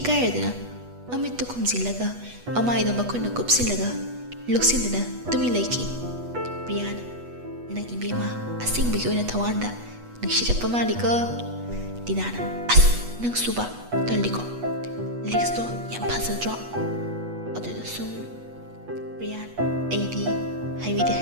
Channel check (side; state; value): left; late; 8.2 ms